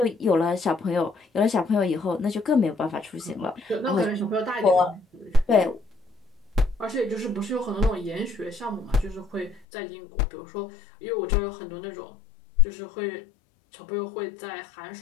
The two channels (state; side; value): drops out; right; at 9.7 s